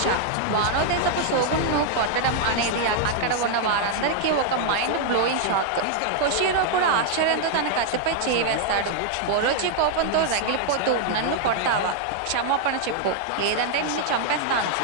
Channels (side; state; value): both; different; correlation 0.00